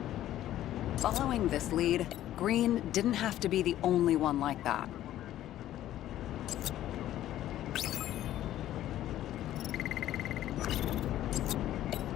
Following this lead, Green didn't have to be the only one like that.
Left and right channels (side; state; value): right; quieter; 13.0 dB